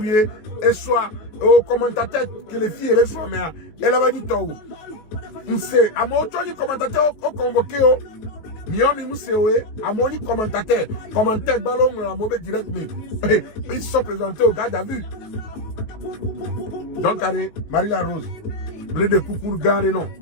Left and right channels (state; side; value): late; right; 19 ms